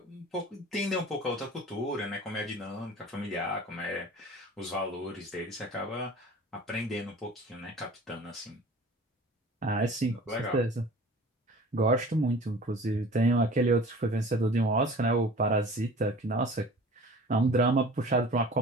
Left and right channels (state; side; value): normal; both; correlation 0.43